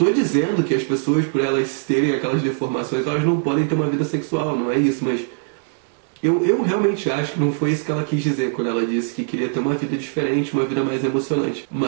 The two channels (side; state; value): left; silent; 62 dB below the other